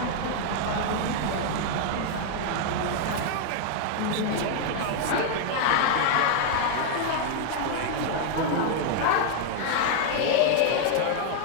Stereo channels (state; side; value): different; both; correlation 0.00